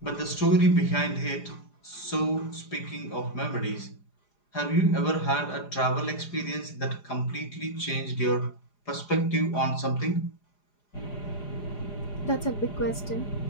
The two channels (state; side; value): late; right; 4.9 ms